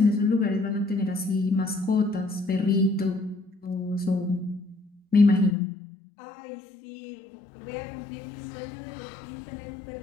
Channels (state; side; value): drops out; right; at 5.6 s